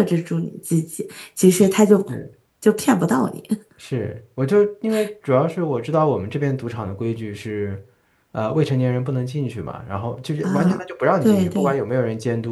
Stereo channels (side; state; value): both; identical; correlation 1.00